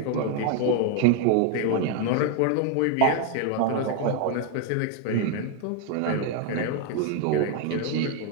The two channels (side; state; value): both; different; correlation 0.00